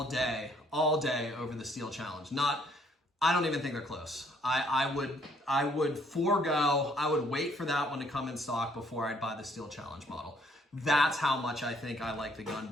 day over the Steel Challenge. I don't even think they're close. I would wait for that one to come in stock before I'd buy the Steel Challenge model. That's how much I think I like the gun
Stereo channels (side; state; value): both; normal; correlation 0.65